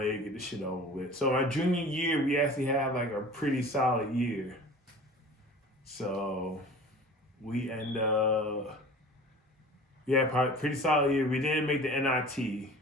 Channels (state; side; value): normal; both; correlation 0.41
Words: get this shit over with. So my junior year, we actually had like a pretty solid year. So we end up, probably pretty solid year. We didn't make the NIT,